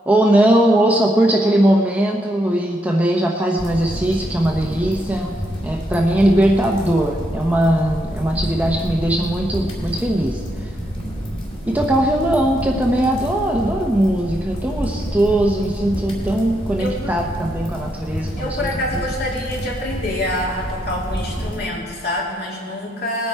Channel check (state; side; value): normal; both; correlation 0.78